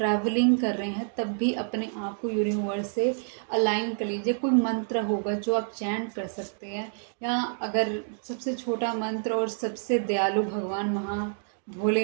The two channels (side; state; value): left; silent; digital silence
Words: कर रहे हैं, तब भी अपने आप को यूनिवर्स से अलाइन कर लीजिए। कोई मंत्र होगा जो आप चैंट कर सकते हैं, या अगर सबसे छोटा मंत्र और सबसे दयालु भगवान